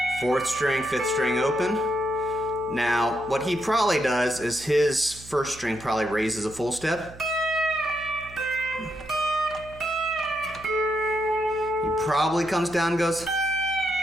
4th string, 5th string open. Now, what he probably does is his 1st string probably raises a full step. He probably comes down and goes,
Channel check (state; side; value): noise; right; hum, 18 dB below the sound